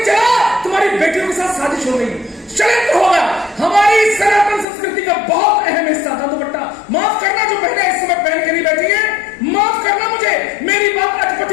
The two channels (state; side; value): drops out; right; at 4.7 s